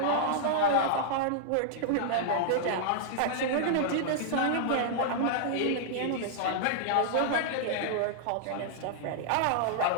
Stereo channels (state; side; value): different; both; correlation -0.01